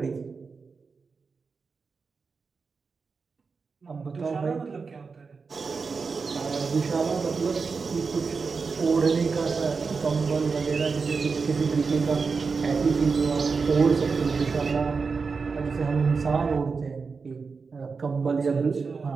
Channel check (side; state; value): left; quieter; 4.9 dB